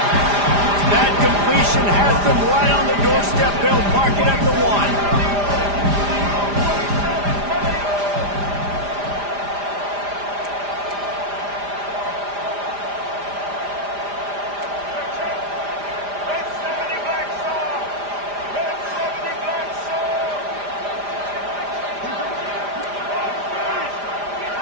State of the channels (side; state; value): left; late; 4.9 ms